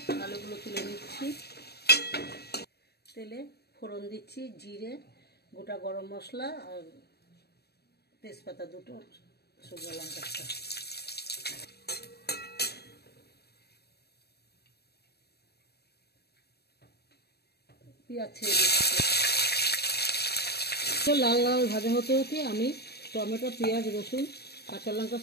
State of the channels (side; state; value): right; late; 0.47 ms